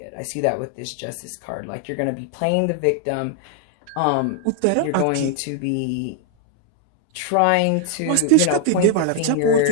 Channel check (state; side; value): different; both; correlation 0.00